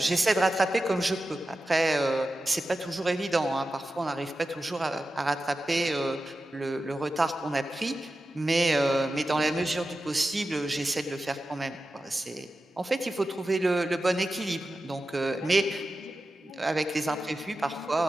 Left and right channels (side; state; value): both; normal; correlation 0.92